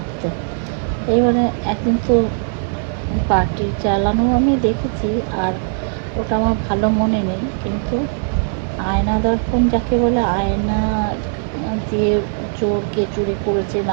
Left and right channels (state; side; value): silent; left; digital silence